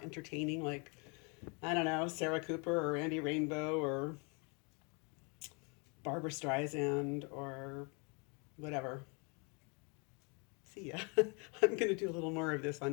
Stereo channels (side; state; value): right; quieter; 33.5 dB